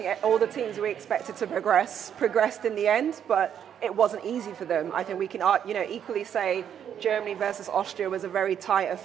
all the teams we expected to progressed in the end, but it wasn't easy for them. I think we can, equally say Germany versus Austria was a very tight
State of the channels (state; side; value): quieter; left; 8.9 dB